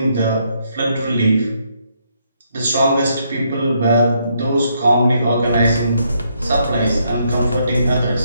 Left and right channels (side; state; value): both; inverted; correlation -0.74